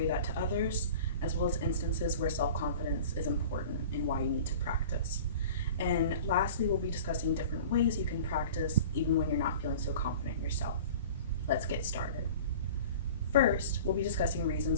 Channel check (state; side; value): inverted; both; correlation -0.41